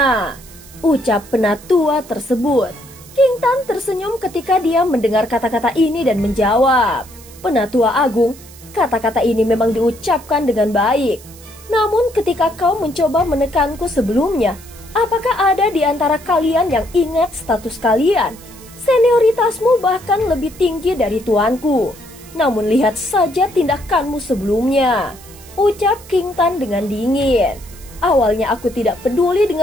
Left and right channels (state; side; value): noise; right; hiss, 21 dB below the sound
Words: Ucap penatua tersebut. King Tan tersenyum ketika dia mendengar kata-kata ini dan menjawab. Penatua Agung, kata-kata ini memang diucapkan dengan baik. Namun ketika kau mencoba menekanku sebelumnya, apakah ada di antara kalian yang ingat status kalian? Senioritasmu bahkan lebih tinggi dari tuanku. Namun lihat saja tindakanmu sebelumnya. Ucap King Tan dengan dingin. Awalnya aku tidak peduli